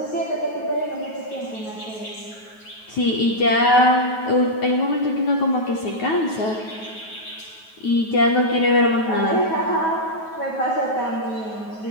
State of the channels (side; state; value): right; late; 9.3 ms